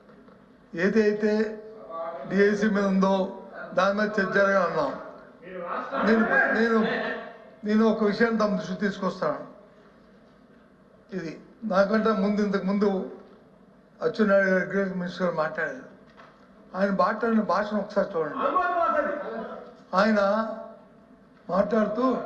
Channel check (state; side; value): identical; both; correlation 1.00